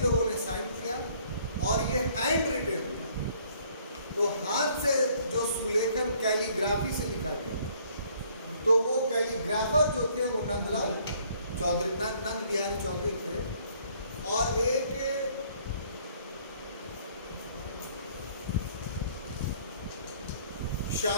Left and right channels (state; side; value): inverted; both; correlation -0.61